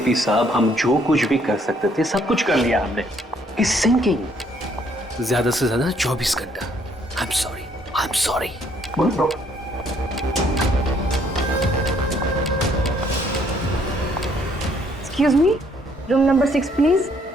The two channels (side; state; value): both; normal; correlation 0.66